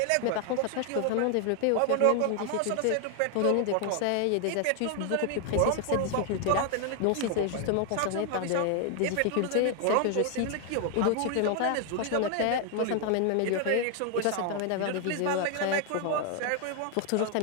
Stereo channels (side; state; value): both; different; correlation 0.00